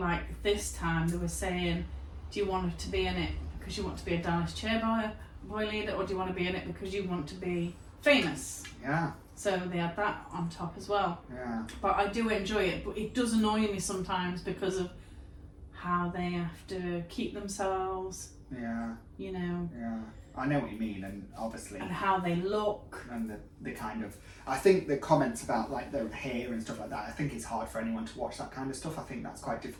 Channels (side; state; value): both; identical; correlation 1.00